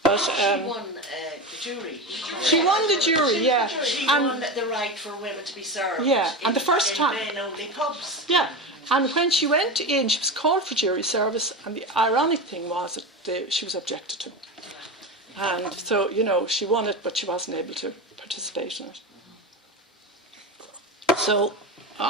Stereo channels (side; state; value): both; normal; correlation 0.22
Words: But she won the jury. She won the jury, yeah. She won the right for women to be served. Yeah, and the first time. In men-only pubs. Yeah, and when she went in, she was called for jury service, and the ironic thing was that she was objected to. And so, she won it, but she wasn't able to participate in it. So,